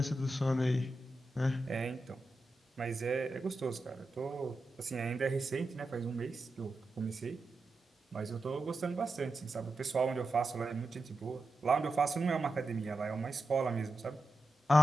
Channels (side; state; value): both; normal; correlation 0.90